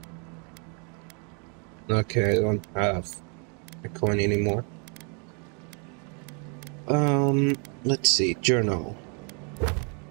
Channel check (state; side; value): quieter; left; 36.9 dB